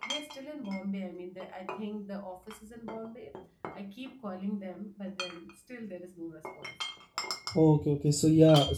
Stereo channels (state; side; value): identical; both; correlation 1.00